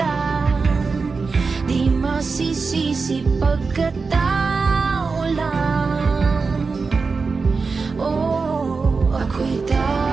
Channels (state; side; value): quieter; left; 4.5 dB